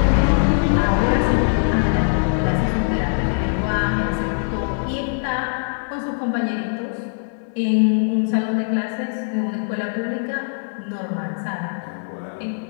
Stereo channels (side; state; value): right; silent; 65 dB below the other